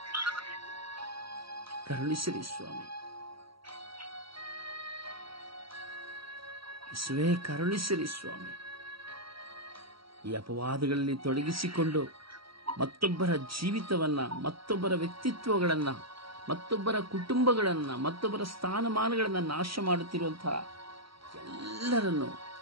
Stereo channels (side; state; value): left; late; 0.75 ms